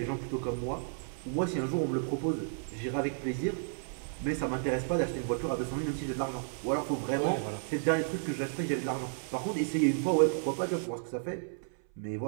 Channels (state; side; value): silent; left; 56 dB below the other